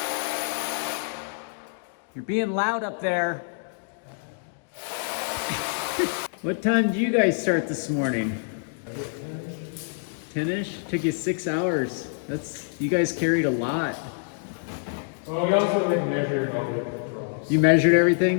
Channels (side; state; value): right; silent; digital silence